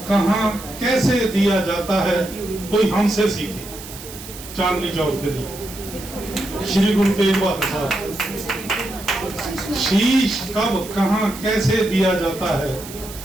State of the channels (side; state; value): right; noise; hiss, 14 dB below the sound